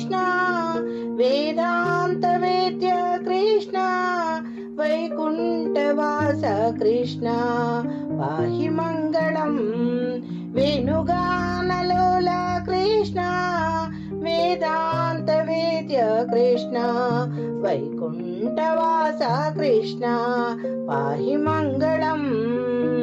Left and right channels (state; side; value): identical; both; correlation 1.00